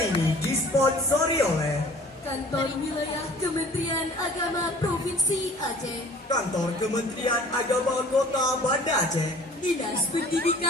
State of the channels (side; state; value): both; normal; correlation 0.49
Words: ini disponsori oleh Kantor Wilayah Kementerian Agama Provinsi Aceh, Kantor Kementerian Agama Kota Banda Aceh, Dinas